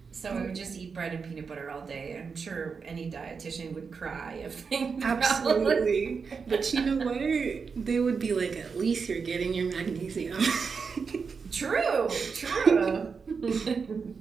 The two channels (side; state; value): left; quieter; 5.4 dB